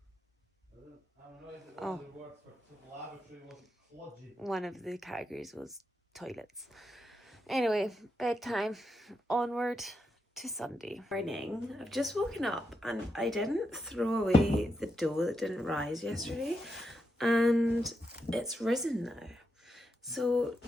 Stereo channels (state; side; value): normal; both; correlation 0.85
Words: I'm annoyed that Oh. the word for lavatory wasn't kludgy. One of the categories was toilets. Anyway, bedtime. Onward to Sunday morning. I've just woken up and I didn't throw away the dough that didn't rise yesterday, and it's risen now. So